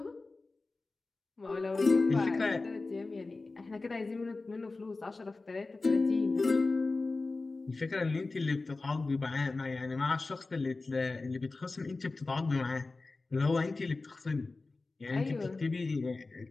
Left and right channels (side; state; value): right; quieter; 3.5 dB